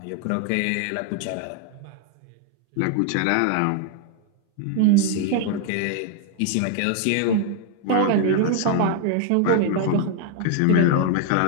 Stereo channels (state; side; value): different; both; correlation 0.00